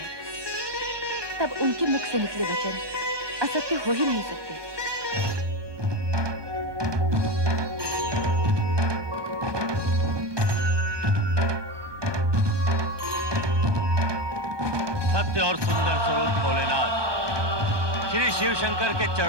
तब उनके मुख से निकले वचन असत्य हो ही नहीं सकते। सत्य और सुंदर स्वरूप भोलेनाथ, श्री शिव शंकर के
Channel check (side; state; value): left; late; 1.2 ms